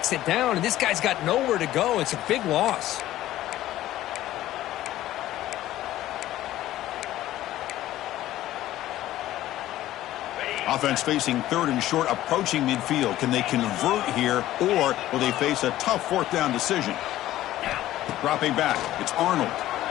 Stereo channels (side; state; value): right; quieter; 14.4 dB